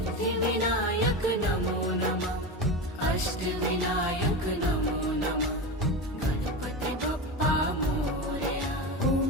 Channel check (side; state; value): both; normal; correlation 0.22